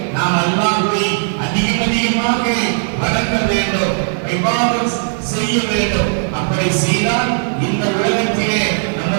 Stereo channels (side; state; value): left; silent; digital silence